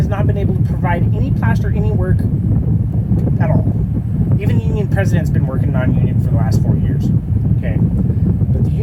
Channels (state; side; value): identical; both; correlation 1.00